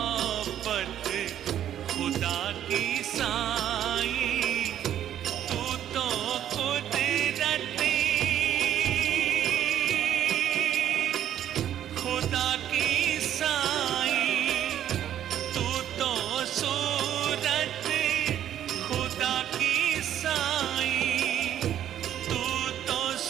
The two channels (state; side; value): quieter; left; 10.8 dB